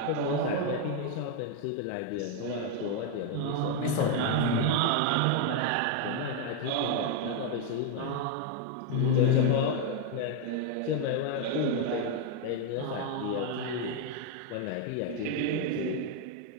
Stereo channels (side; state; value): both; different; correlation 0.01